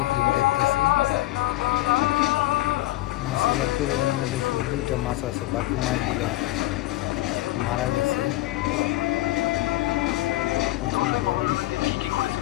ফিল্ম দেখতেছি। মাছের অ্যাকুরিয়ামের মধ্যে শুধু 2টা মাছ আছে, বাকি মাছগুলো মারা গেছে। প্রচুর গরম।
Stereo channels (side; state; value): right; quieter; 17.7 dB